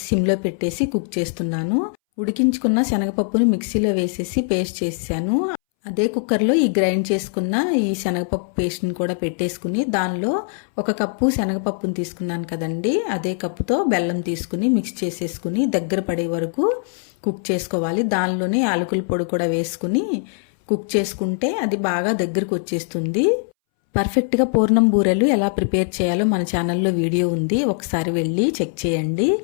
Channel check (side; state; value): right; silent; 64 dB below the other